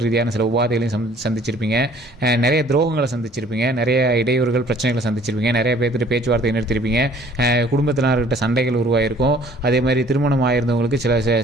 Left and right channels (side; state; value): both; normal; correlation 0.55